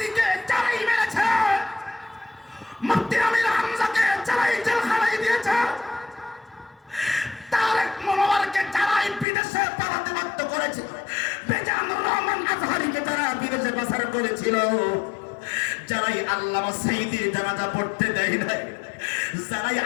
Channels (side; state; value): right; drops out; at 9.2 s